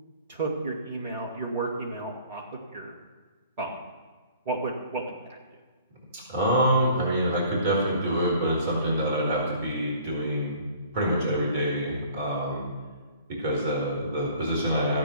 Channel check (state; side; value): inverted; both; correlation -0.52